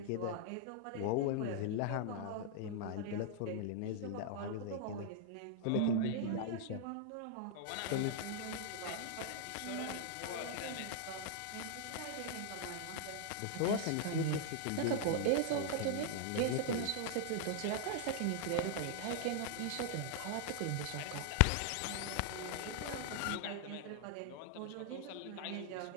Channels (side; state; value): both; different; correlation 0.00